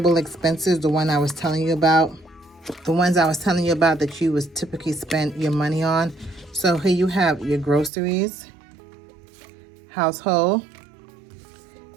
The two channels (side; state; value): left; drops out; at 7.9 s